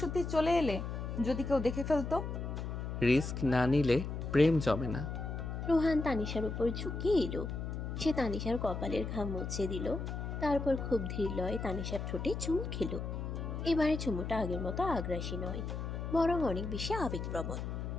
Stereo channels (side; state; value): left; noise; hum, 5 dB below the sound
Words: সত্যি চলে এলে, যদি কেউ দেখে ফেলতো? রিস্ক না নিলে প্রেম জমে না। রোহান তানিশার উপর ঝুঁকে এলো। সে তানিশার কপালের ঘাম মুছে দিল। তারপর খুব ধীর লয়ে তানিশার ঠোঁটে চুমু খেলো। এবারে চুমুটা আগের মতো আগ্রাসী নয়, বরং অনেক বেশি আবেগপ্রবণ,